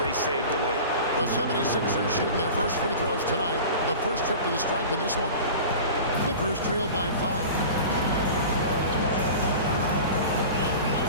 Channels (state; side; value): inverted; both; correlation -0.36